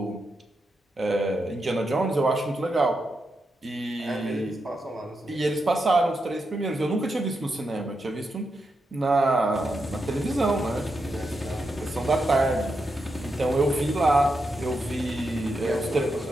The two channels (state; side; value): normal; both; correlation 0.85